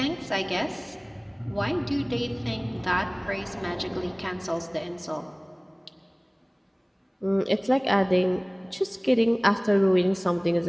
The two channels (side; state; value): both; identical; correlation 1.00